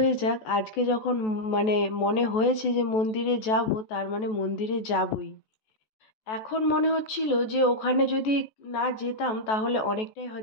যাক, আজকে যখন মানে মনে হয়েছে যে মন্দিরে যাব, তার মানে মন্দিরে যাবই। এখন মনে হচ্ছিল যে ওখানে যদি না যেতাম তাহলে অনেকটাই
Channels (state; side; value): late; right; 14 ms